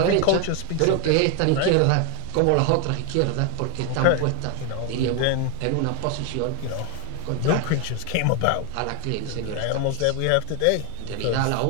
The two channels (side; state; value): both; different; correlation 0.01